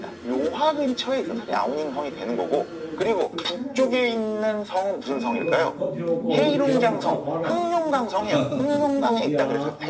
요하 근처에 있어서 랴오닝 성이 되는 거고, 그리고 북쪽에 있는 성은 무슨 성일까요? 헤이룽장성, 흑룡강성이에요. 흑룡강에 있다 그래서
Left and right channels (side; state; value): both; identical; correlation 1.00